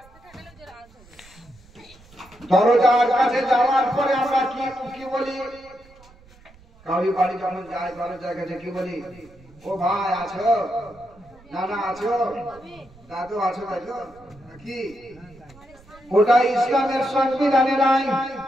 দরজার কাছে যাওয়ার পরে আমরা কি বলি? কাউরি বাড়ি যখন যায় দরজার কাছে কি বলি? ও ভাই আছো, নানা আছো, দাদু আছো, তাই তো কি? ওটা ইসলামের সংবিধানে নাই।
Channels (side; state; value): right; noise; rumble, 26 dB below the sound